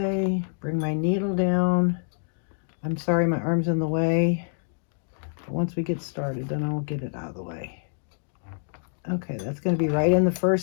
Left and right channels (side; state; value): right; silent; digital silence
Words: Bring my needle down. I'm sorry, my arm's in the way. But once we get started, then I'll get it out of the way. Okay, that's going to be right in the